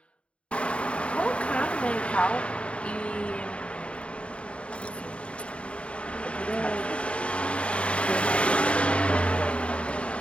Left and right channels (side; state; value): right; late; 0.060 ms